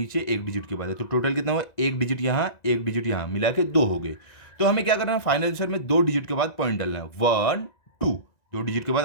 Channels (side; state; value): right; late; 1.9 ms